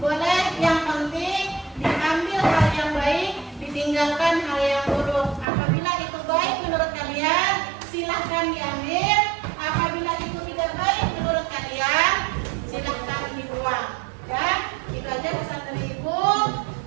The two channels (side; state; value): left; drops out; at 5.5 s